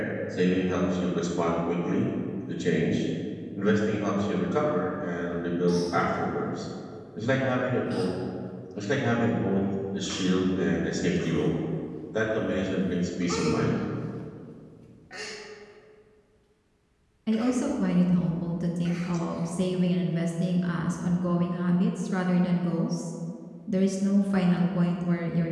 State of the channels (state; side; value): identical; both; correlation 1.00